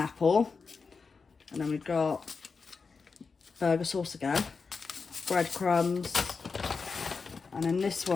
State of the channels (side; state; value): right; quieter; 4.9 dB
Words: apple. And then we've got burger sauce again, breadcrumbs. And in this